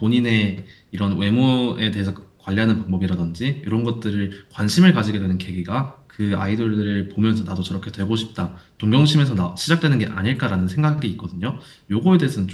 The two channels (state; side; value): identical; both; correlation 1.00